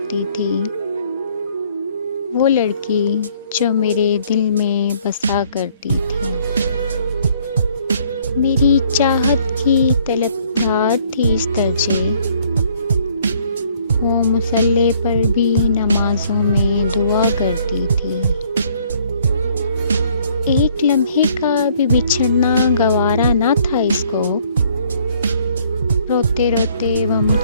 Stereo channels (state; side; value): inverted; both; correlation -0.62